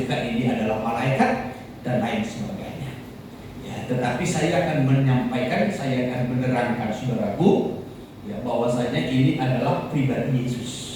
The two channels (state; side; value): identical; both; correlation 1.00